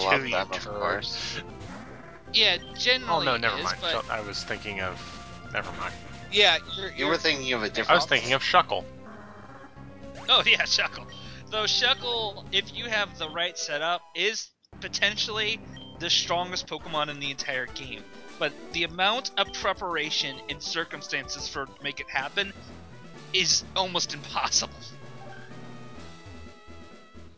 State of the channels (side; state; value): both; identical; correlation 1.00